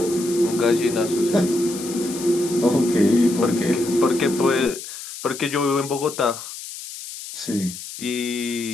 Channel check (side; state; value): left; noise; hiss, 11 dB below the sound